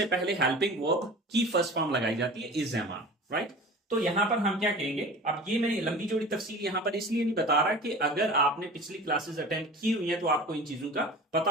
पहले हेल्पिंग वर्ब की फर्स्ट फॉर्म लगाई जाती है, इज एम आर, राइट। तो यहां पर हम क्या कहेंगे, अब ये मैं लंबी चौड़ी तफसील यहां पर इसलिए नहीं बता रहा कि अगर आपने पिछली क्लासेस अटेंड की हुई है तो आपको इन चीजों का पता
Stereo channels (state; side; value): normal; both; correlation 0.38